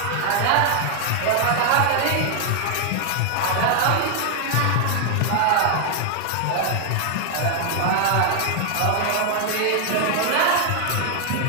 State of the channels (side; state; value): both; different; correlation 0.00